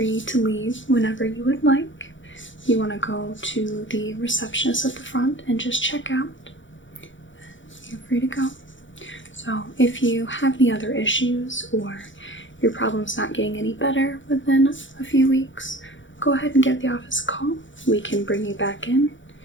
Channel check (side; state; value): right; late; 0.55 ms